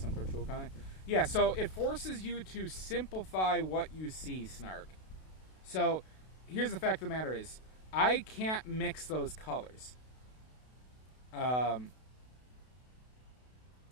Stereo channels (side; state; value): right; late; 32 ms